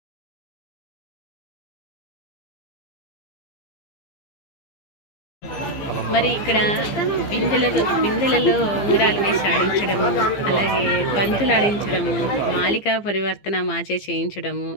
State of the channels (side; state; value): right; late; 15 ms